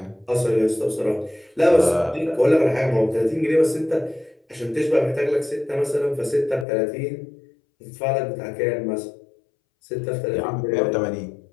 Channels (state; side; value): drops out; right; at 6.7 s